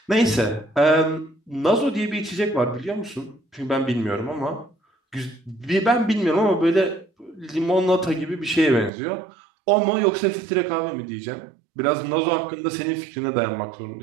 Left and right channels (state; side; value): drops out; left; at 8.9 s